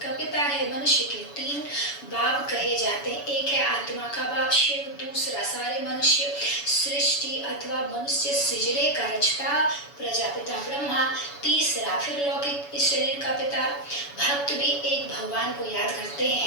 पिता है। मनुष्य के 3 बाप कहे जाते हैं। एक है आत्मा का बाप शिव, दूसरा सारे मनुष्य सृष्टि अथवा मनुष्य सृजने का रचता प्रजापिता ब्रह्मा, तीसरा फिर लौकिक इस शरीर का पिता। भक्त भी एक भगवान को याद करते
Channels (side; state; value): right; late; 7.0 ms